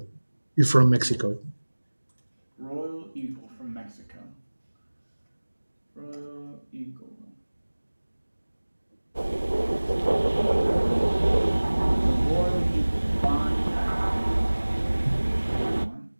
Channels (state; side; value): inverted; both; correlation -1.00